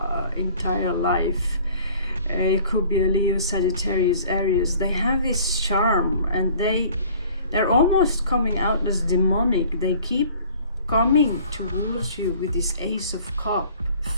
entire life. It could be a Leo, Sagittarius, Aries. They have this charm, and they're almost coming out as demonic. They keep coming towards you with this Ace of Cups,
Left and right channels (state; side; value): inverted; both; correlation -0.51